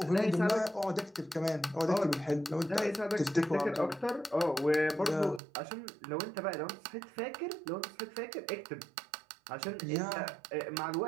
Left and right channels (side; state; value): left; drops out; at 5.4 s